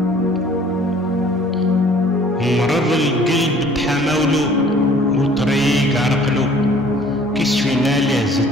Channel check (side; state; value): both; normal; correlation 0.54